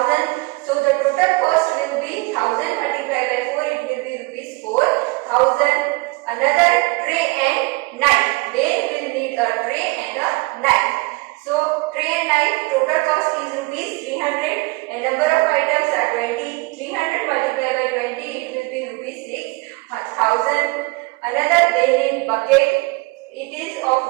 So the total cost will be 1,000 multiplied by 4, it will be rupees 4,000. Another tray and knife. They will need a tray and a knife. So tray and knife total cost is rupees 300 and number of items are 20. 300 multiplied by 20, it will be rupees 6,000. Another they need bucket. It is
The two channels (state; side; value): quieter; left; 25.0 dB